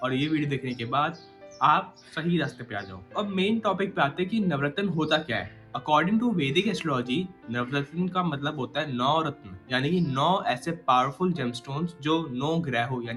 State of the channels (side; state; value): both; identical; correlation 1.00